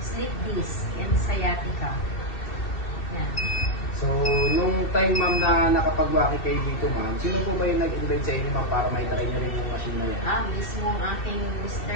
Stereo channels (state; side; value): late; right; 2.7 ms